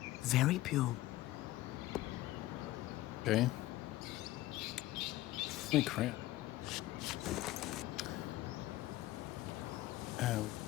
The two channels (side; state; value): right; quieter; 16.5 dB